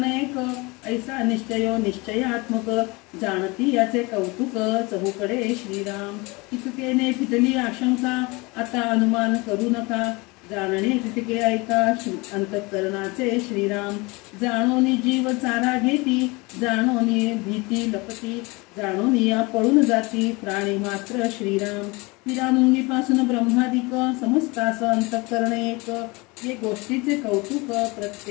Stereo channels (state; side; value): quieter; right; 25.4 dB